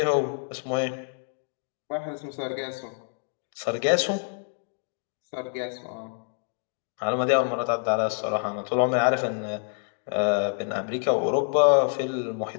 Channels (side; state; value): right; silent; digital silence